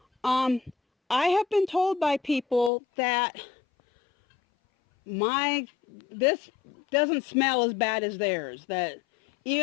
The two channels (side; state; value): right; drops out; at 2.7 s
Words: I have been told by people that this doesn't smell as bad as theirs, that